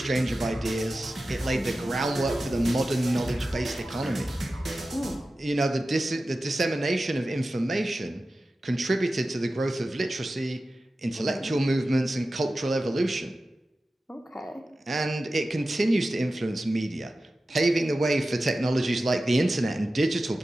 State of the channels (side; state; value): both; normal; correlation 0.94